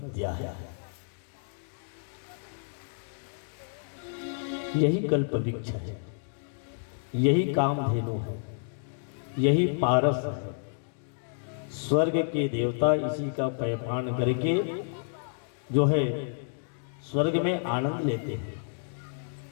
है। यही कल्प वृक्ष है, यही कामधेनु है, यही पारस है। स्वर्ग के देवता इसी का पैपान करके जो है स्वर्ग में आनंद लेते हैं।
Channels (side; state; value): right; silent; digital silence